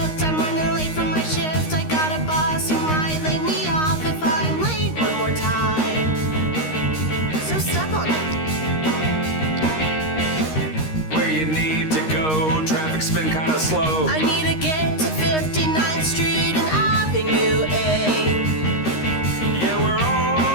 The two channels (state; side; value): late; right; 13 ms